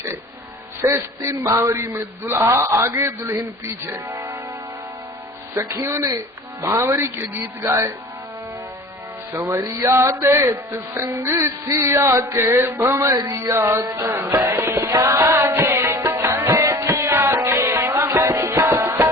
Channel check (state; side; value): normal; both; correlation 0.42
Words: शेष 3 भांवरी में दुल्हा आगे दुल्हन पीछे। सखियों ने भांवरी के गीत गाए। संवरिया देत संग सिया के भंवरिया, संवरिया देत संग सिया के भंवरिया।